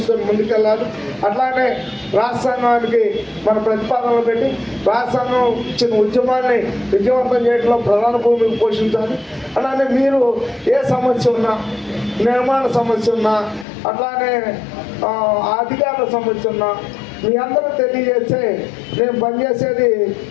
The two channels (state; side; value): drops out; right; at 13.7 s